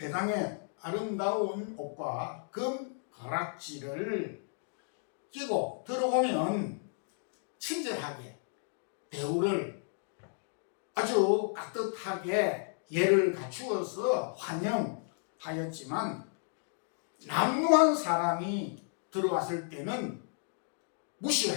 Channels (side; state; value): right; silent; 56 dB below the other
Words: 회당에 아름다운 옷과 금 가락지를 끼고 들어오면 친절하게 대우를 아주 깍듯하게 예를 갖추어서 환영하였지만 남루한 사람이 들어왔을 때는